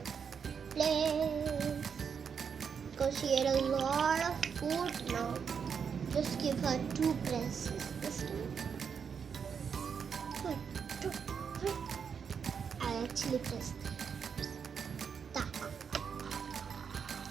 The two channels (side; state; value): left; quieter; 6.7 dB